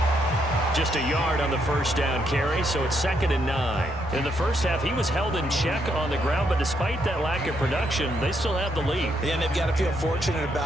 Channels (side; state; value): both; normal; correlation 0.76